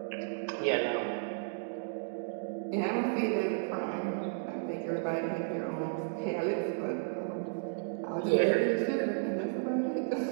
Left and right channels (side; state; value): left; silent; digital silence